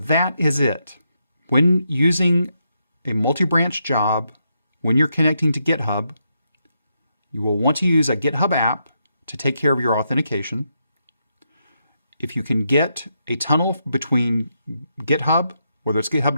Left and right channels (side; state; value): both; inverted; correlation -0.81